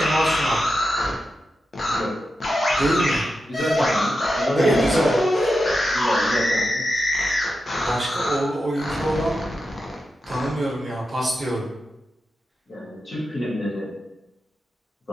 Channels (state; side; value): normal; both; correlation 0.89